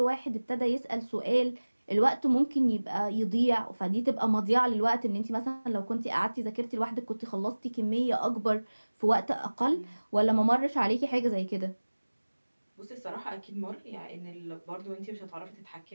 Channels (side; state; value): both; inverted; correlation -1.00